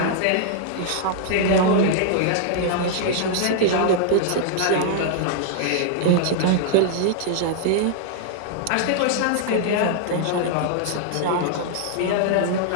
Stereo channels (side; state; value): both; different; correlation -0.01